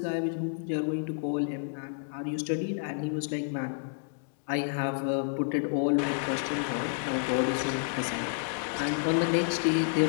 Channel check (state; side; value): silent; right; digital silence